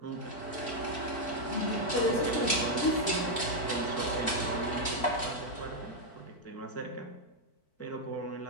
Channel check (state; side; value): late; right; 4.5 ms